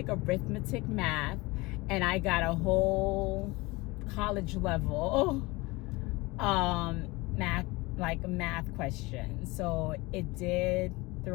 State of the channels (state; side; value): quieter; right; 23.0 dB